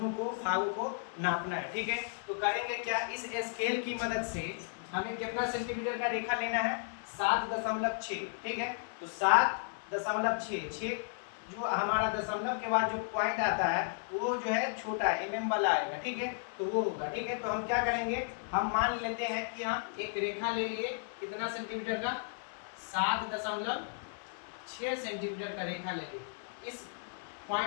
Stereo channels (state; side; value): silent; right; 55 dB below the other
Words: को भागों को नापना है। ठीक है, तो करेंगे क्या, इस स्केल की मदद से हमें कितना सेंटीमीटर का रेखा लेना है, 7.6। ठीक है, तो 7.6 जो हमारा दशमलव के बाद जो पॉइंट आता है वो जो है छोटा एमएम वाला आएगा। ठीक है, तो वो होगा। ठीक है, तो हम क्या करेंगे, हम मान लेते हैं कि हम एक रेखा ले लिए कितना सेंटीमीटर का, 7.6 सेंटीमीटर का रेखा ले लिए। इस